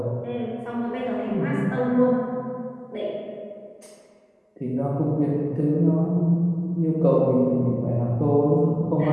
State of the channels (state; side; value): identical; both; correlation 1.00